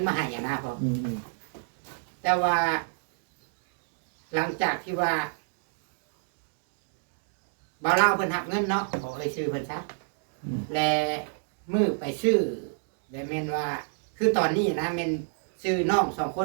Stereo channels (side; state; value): left; silent; digital silence